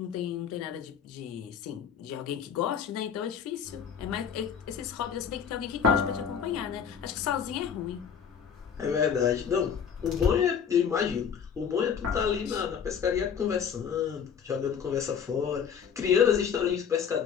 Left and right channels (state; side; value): quieter; right; 7.4 dB